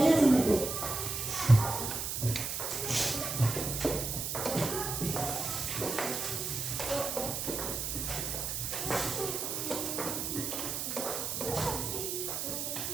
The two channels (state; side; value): noise; right; hiss, 3 dB below the sound